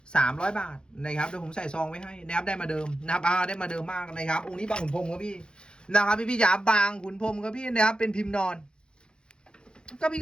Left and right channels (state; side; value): late; right; 0.049 ms